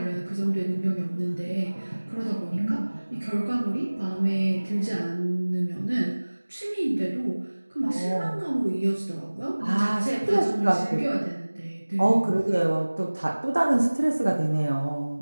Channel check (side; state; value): both; inverted; correlation -1.00